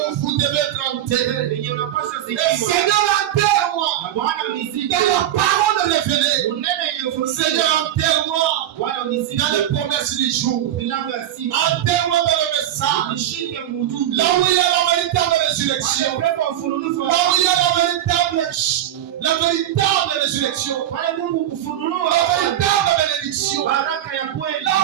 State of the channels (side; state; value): left; quieter; 11.9 dB